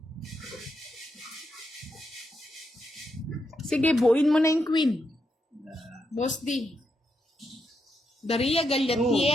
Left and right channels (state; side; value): normal; both; correlation 0.82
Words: Sige, buuin mo na yung queen. Boss D. Daria Gallatiera,